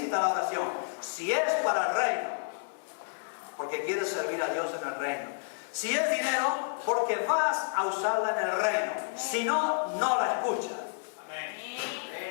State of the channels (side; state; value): right; silent; digital silence